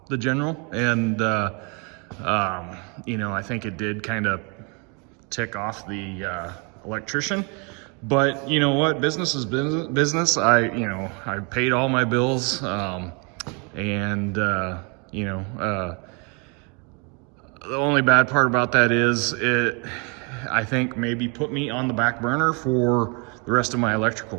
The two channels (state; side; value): quieter; left; 33.4 dB